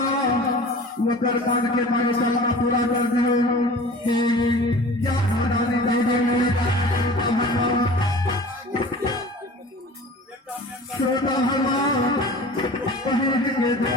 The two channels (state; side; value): normal; both; correlation 0.41